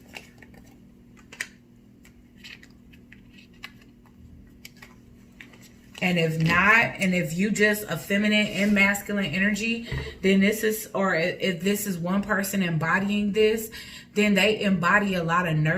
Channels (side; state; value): both; identical; correlation 1.00